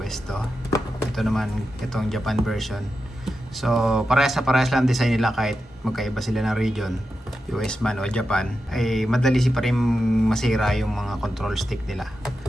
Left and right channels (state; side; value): normal; both; correlation 0.89